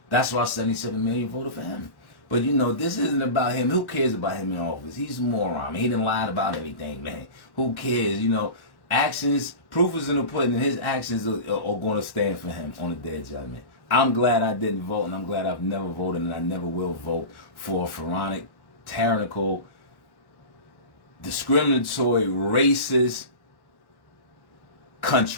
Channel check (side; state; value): right; late; 1.1 ms